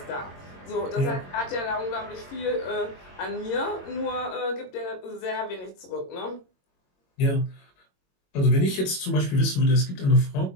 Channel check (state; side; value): late; right; 22 ms